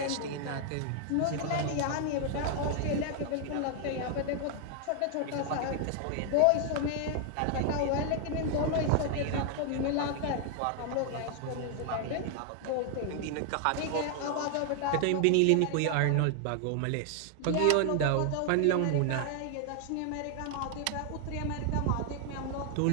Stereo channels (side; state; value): both; different; correlation 0.00